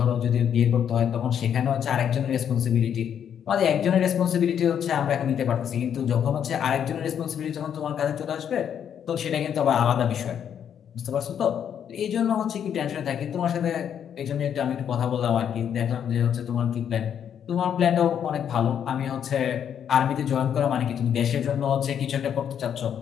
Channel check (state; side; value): quieter; right; 8.7 dB